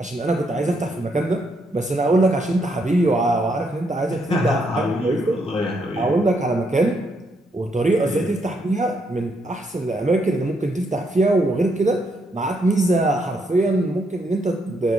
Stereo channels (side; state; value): both; normal; correlation 0.76